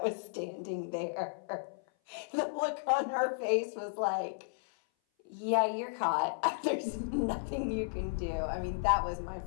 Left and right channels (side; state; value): right; silent; 55 dB below the other